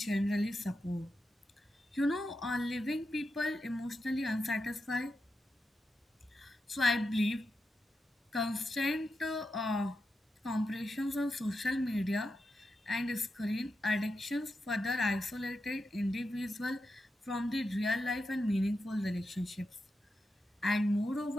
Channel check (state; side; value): normal; both; correlation 0.88